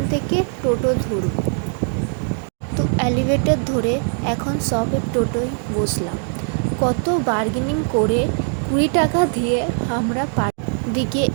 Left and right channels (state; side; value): silent; left; 56 dB below the other